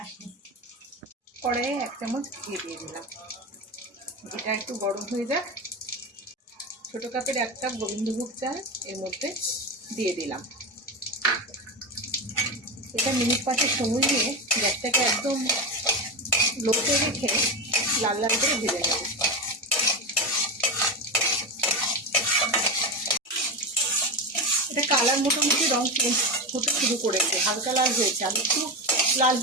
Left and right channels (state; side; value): normal; both; correlation 0.17